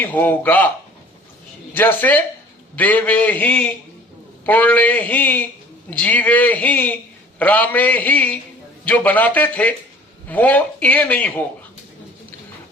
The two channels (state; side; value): normal; both; correlation 0.49